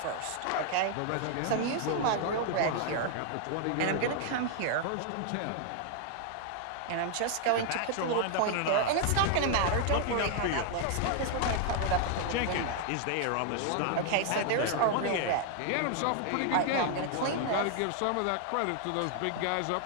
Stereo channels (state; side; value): different; both; correlation 0.00